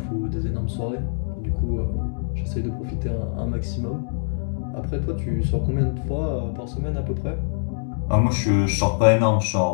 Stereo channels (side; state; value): right; silent; digital silence